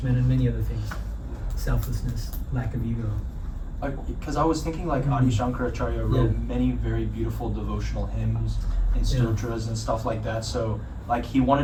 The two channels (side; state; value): both; identical; correlation 1.00